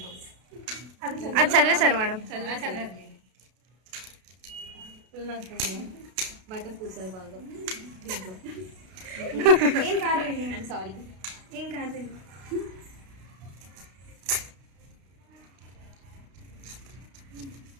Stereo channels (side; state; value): left; late; 32 ms